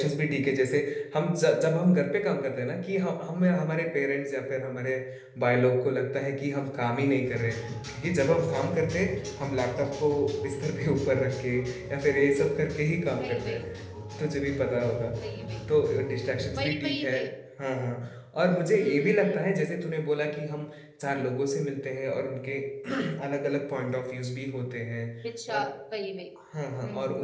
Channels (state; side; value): identical; both; correlation 1.00